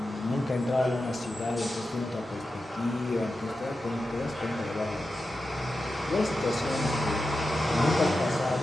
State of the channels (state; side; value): normal; both; correlation 0.91